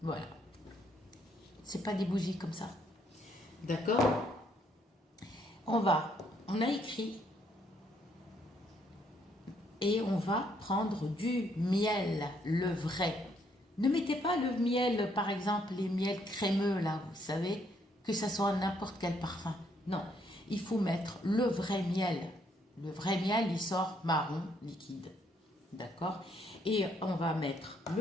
voilà. C'est pas des bougies comme ça, d'accord? On a écrit. Et on va prendre du miel, le vrai. Ne mettez pas le miel, par exemple, les miels crémeux, là, vous savez, que ça soit n'importe quel parfum. Non, il faut mettre le vrai miel. Le vrai miel, il sort marron, liquide. D'accord? Et on va mettre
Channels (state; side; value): normal; both; correlation 0.70